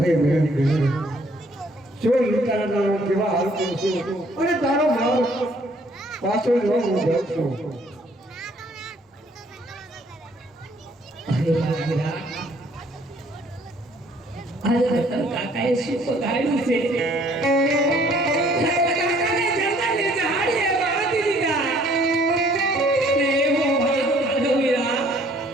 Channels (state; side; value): normal; both; correlation 0.61